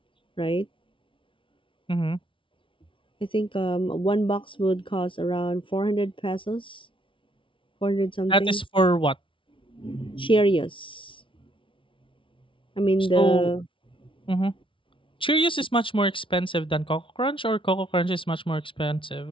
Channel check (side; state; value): right; late; 0.25 ms